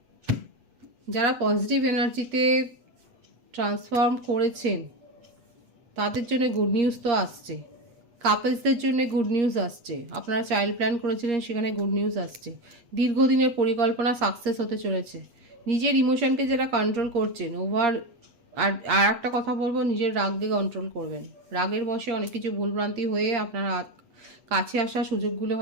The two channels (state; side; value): late; left; 8.5 ms